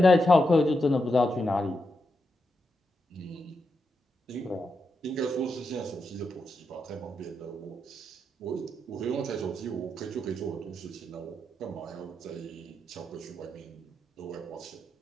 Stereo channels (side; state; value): both; normal; correlation 0.85